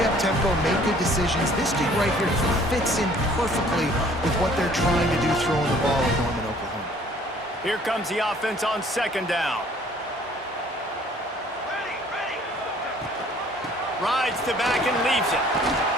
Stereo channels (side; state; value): both; normal; correlation 0.56